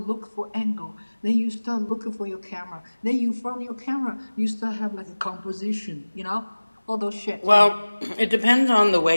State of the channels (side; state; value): both; inverted; correlation -1.00